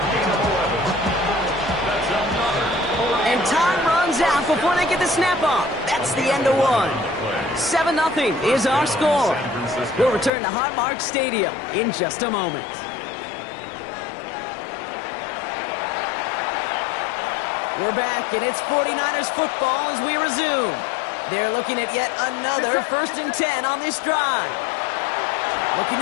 And time runs out before they get the snap off. That's the end of one. 7-0 is our score. We'll return to Highmark Stadium in just a moment. We're back, and it's 49ers football as we resume. They're looking at yet another 1st and 10 on this drive. Looking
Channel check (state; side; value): drops out; right; at 10.3 s